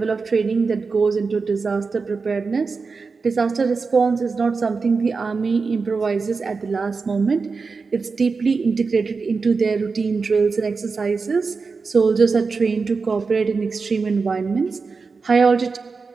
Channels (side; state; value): left; quieter; 4.6 dB